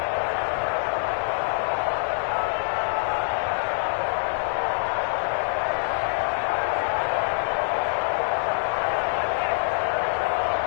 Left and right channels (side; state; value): right; silent; 62 dB below the other